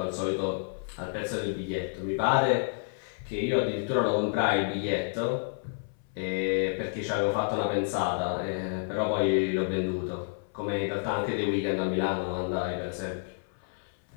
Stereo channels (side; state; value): right; silent; 58 dB below the other